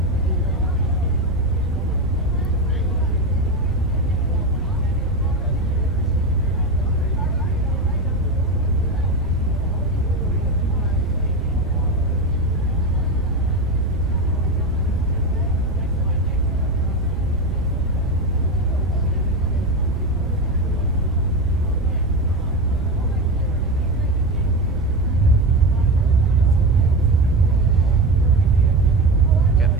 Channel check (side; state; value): right; noise; rumble, 9 dB below the sound